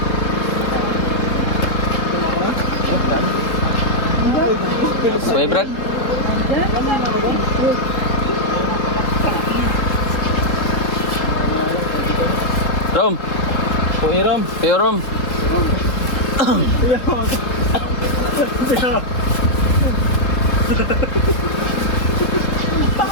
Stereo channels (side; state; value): right; late; 3.7 ms